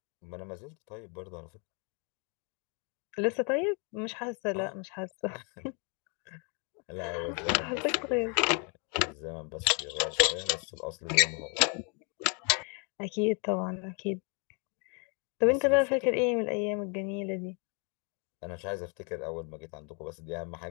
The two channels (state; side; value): quieter; right; 36.5 dB